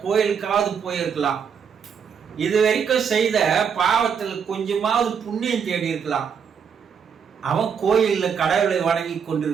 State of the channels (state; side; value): quieter; left; 6.9 dB